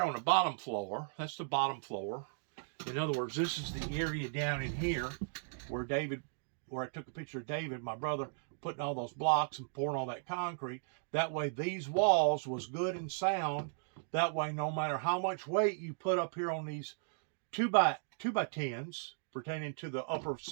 on the bottom floor. That's the bottom floor. In other words, this is the area down in here where I took a picture of David, my brother, putting all those blocks and pouring all that concrete. That way these walls was good and sound. That way no matter how much weight you put up here on these 2x10s pertaining to the upper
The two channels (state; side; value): silent; left; digital silence